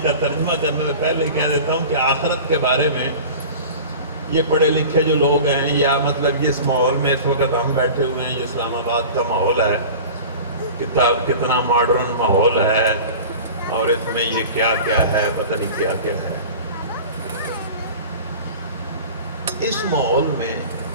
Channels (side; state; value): both; inverted; correlation -0.37